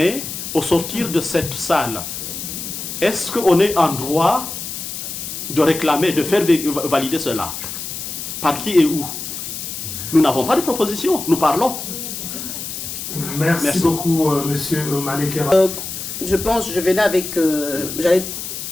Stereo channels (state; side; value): noise; left; hiss, 7 dB below the sound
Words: au sortir de cette salle, est-ce qu'on est en droit de réclamer, de faire valider cela? Par qui et où? Nous n'avons pas de proposition, nous parlons. Merci beaucoup, monsieur Malekera. Je pense, je venais avec, j'allais